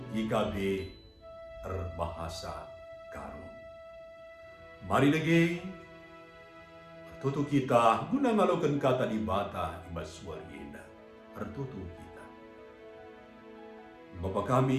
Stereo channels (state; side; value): identical; both; correlation 1.00